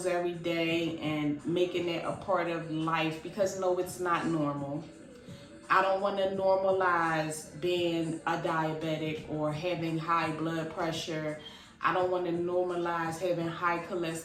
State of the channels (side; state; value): both; identical; correlation 1.00